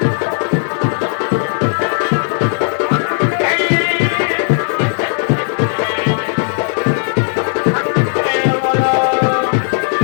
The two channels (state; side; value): silent; right; 59 dB below the other